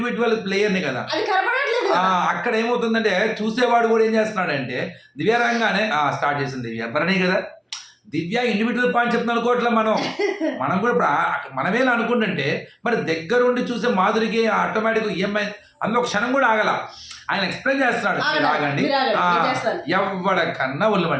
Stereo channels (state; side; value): identical; both; correlation 1.00